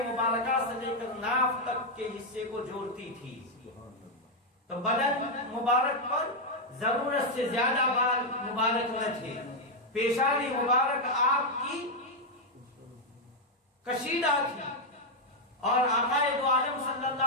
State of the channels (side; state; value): both; normal; correlation 0.00